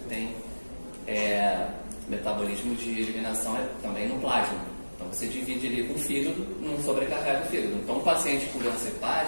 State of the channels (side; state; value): both; inverted; correlation -1.00